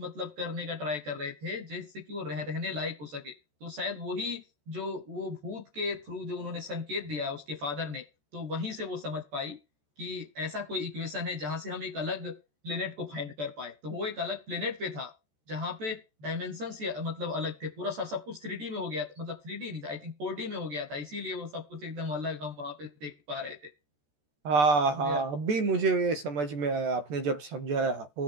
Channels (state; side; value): late; left; 14 ms